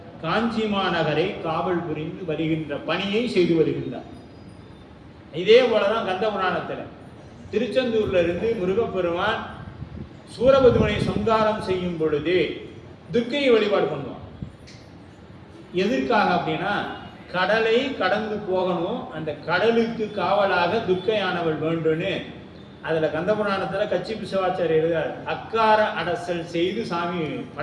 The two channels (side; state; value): both; identical; correlation 1.00